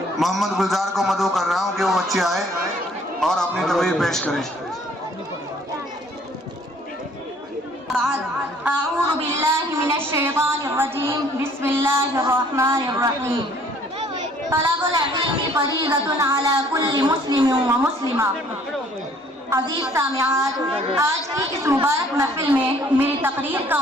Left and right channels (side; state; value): both; normal; correlation 0.58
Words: محمد گلزار کو مدعو کر رہا ہوں کہ وہ بچے آئے اور اپنی تقریر پیش کریں۔ اعوذ باللہ من الشیطان الرجیم، بسم اللہ الرحمن الرحیم۔ طلب العلم فریضۃ علی کل مسلم و مسلمہ۔ عزیز سامعات، آج کی اس مبارک محفل میں میری تقریر کا